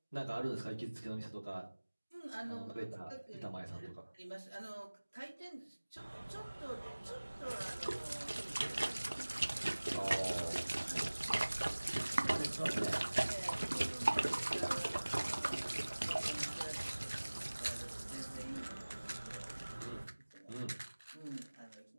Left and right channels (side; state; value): both; inverted; correlation -1.00